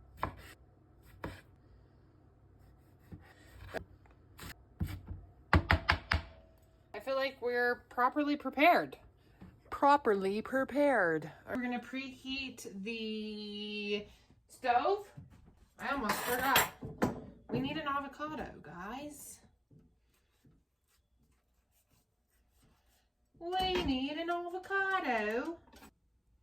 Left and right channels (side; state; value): both; identical; correlation 1.00